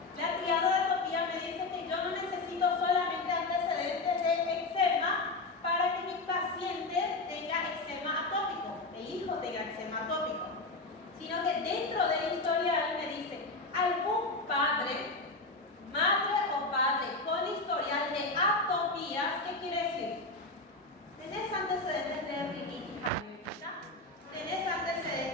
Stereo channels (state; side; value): quieter; right; 3.2 dB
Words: La triada de atopía me dice que yo no necesito solamente antecedentes de eczema para que mi paciente tenga eczema atópico, el hijo tenga eczema atópico, sino que dentro del historial me dice algún padre, madre o padre con historial de atopías. ¿Qué quiere decir? ¿Tenés antecedentes de rinitis alérgica? ¿Tenés